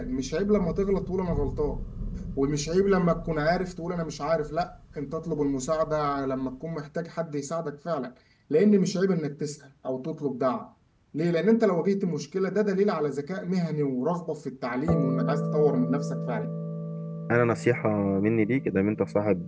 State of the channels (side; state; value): both; identical; correlation 1.00